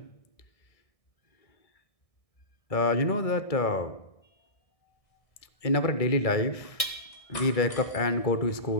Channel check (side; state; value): right; late; 1.6 ms